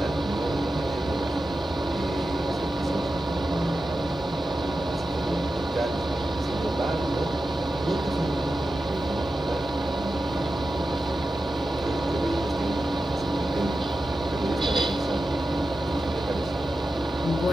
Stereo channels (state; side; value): normal; both; correlation 0.92